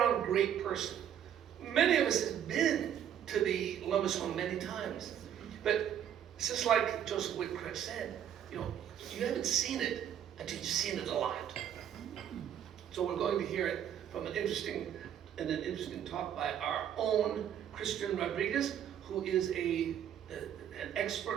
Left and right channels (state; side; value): quieter; left; 9.7 dB